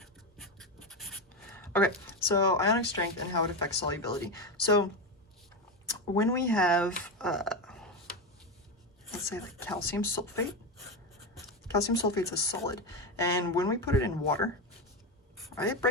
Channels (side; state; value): both; normal; correlation 0.15